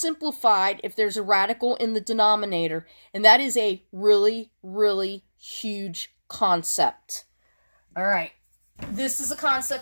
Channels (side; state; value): both; inverted; correlation -1.00